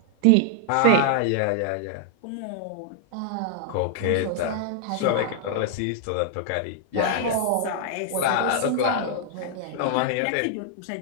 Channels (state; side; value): different; both; correlation 0.00